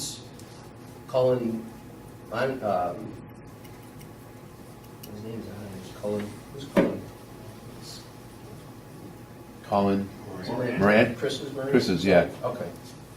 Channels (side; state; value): both; identical; correlation 1.00